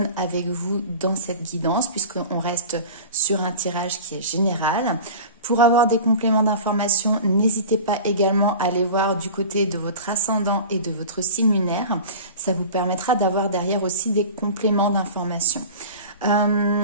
avec vous dans cette guidance, puisqu'on reste sur un tirage qui est général. Pour avoir des compléments d'information, n'hésitez pas également à aller voir du côté de votre ascendant et de votre signe lunaire. Ça vous permettra d'avoir derrière aussi des compléments d'information.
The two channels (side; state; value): both; inverted; correlation -0.36